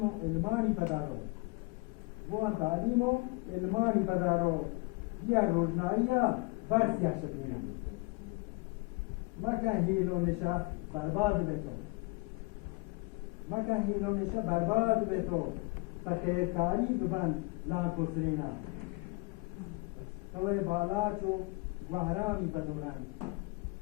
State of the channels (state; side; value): quieter; right; 27.1 dB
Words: و علمانی پدارو و تعلیم و علمانی پدارو بیا روشنایی برسیا شکرینا مکن هیل و نشا برباد بتو مکن هیل و نشا برباد بتو فخیرکاری ببند لانکو سرینا توی بالاچو گوهرامی پدورن